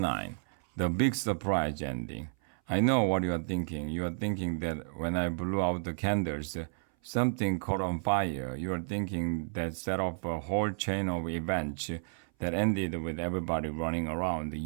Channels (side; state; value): left; silent; 57 dB below the other